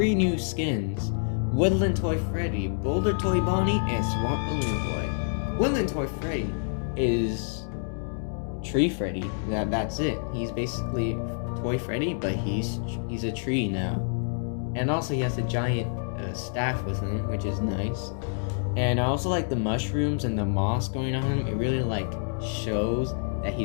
new skins: Woodland Toy Freddy, Boulder Toy Bonnie, and Swamp Balloon Boy. Woodland Toy Freddy is Tree Freddy. That's it. He's basically Toy Freddy, but he's a tree now. And also he has a giant staff with him, which is nice. And I also like the mushrooms and the moss going on him. It really like shows that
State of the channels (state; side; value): silent; right; digital silence